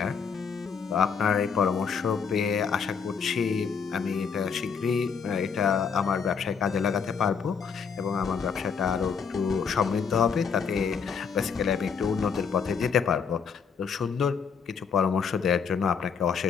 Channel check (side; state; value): right; quieter; 6.2 dB